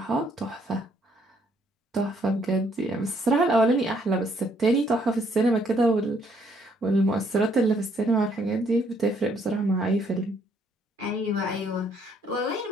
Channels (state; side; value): normal; both; correlation 0.68